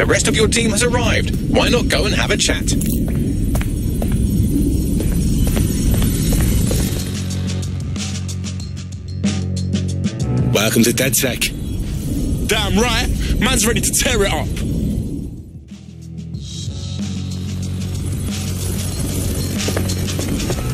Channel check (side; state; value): both; identical; correlation 1.00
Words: rest of your team has arrived. Why not go and have a chat? Welcome to DedSec. Damn right. Man's ready to tear it up.